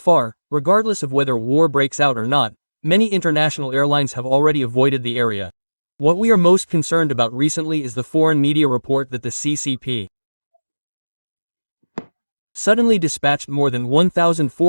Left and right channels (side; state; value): both; inverted; correlation -1.00